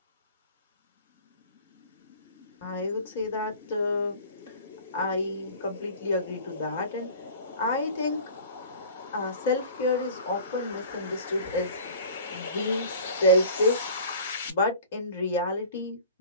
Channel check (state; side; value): inverted; both; correlation -0.43